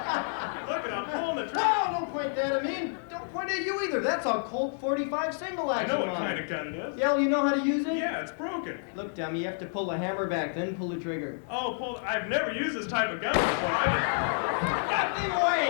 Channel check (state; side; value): silent; right; digital silence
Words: it, I'm pulling the trigger. Oh, don't point that at me. Don't point at you either. That's a Colt 45 single I action know what on kind it. of gun it is. Yeah, well, you know how to use it? Yeah, it's broken. Look, dummy, you have to pull the hammer back, then pull the trigger. Oh, I've never used this type of gun before. Get me